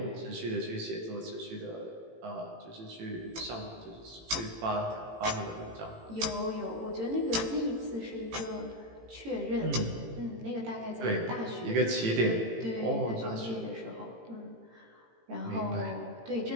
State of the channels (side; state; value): left; late; 18 ms